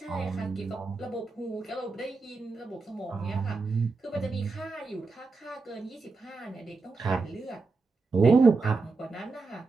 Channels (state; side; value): quieter; left; 4.0 dB